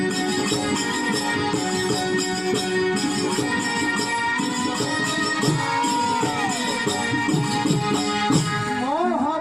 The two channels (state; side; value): noise; left; rumble, 27 dB below the sound